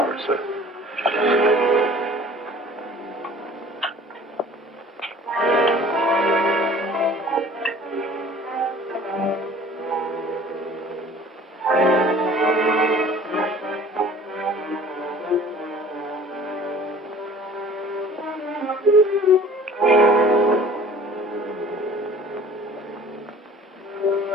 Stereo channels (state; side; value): normal; both; correlation 0.47